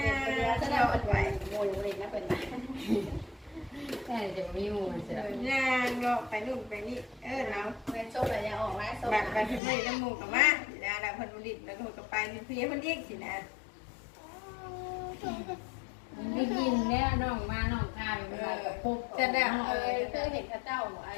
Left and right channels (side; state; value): right; drops out; at 9.6 s